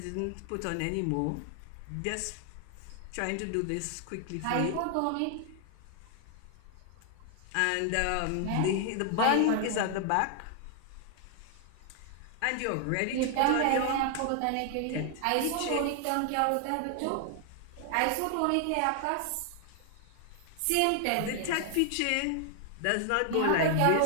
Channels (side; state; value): both; different; correlation 0.00